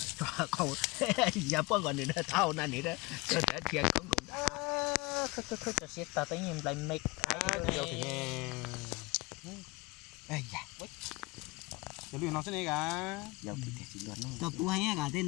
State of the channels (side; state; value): right; quieter; 24.6 dB